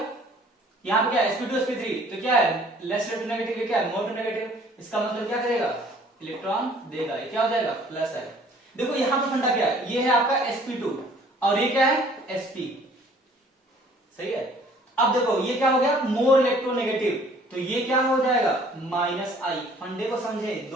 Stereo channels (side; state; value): both; normal; correlation 0.55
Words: यहां पे क्या sp2 sp3, तो क्या है लेस इलेक्ट्रोनेगेटिव, क्या है मोर नेगेटिव, इसका मतलब क्या करेगा, इलेक्ट्रॉन देगा, ये क्या हो जाएगा प्लस है। देखो यहां पर फंडा क्या है, ये है आपका sp2 और ये क्या है sp, सही है। अब देखो ये क्या हो गया, मोर इलेक्ट्रोनेगेटिव, तो ये क्या हो जाएगा -I। फंडे को समझे,